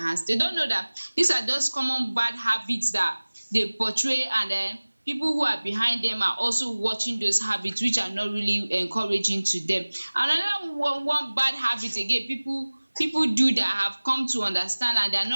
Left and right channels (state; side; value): inverted; both; correlation -1.00